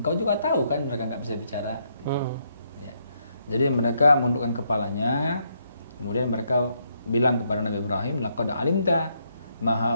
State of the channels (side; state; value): both; inverted; correlation -0.76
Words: juga tahu kan mereka nggak bisa bicara, gitu. Ya. Jadi mereka menundukkan kepalanya, kemudian mereka bilang kepada Nabi Ibrahim, laqad alimta ma